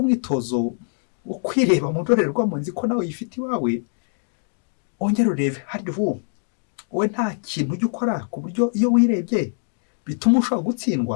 umwitozo wo kwireba mu ndorerwamo, nzi ko nawe yifite iwawe, ongera urebe harya wowe nta kintu ujya ukora ku buryo iyo wirebye bituma ushobora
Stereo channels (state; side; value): silent; right; 63 dB below the other